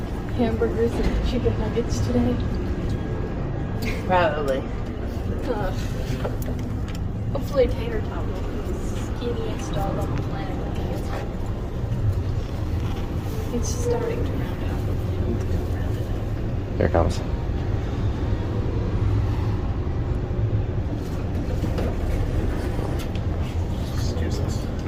Hamburgers and chicken nuggets today. Probably. Hopefully tater tot will be the skinniest dog on the planet. It's starting to round out. Here it comes. Excuse us.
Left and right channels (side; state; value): both; identical; correlation 1.00